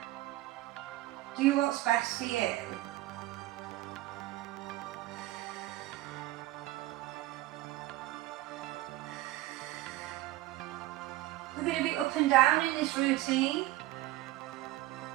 Do what's best for you. We're going to be up and down in this routine.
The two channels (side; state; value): left; quieter; 16.7 dB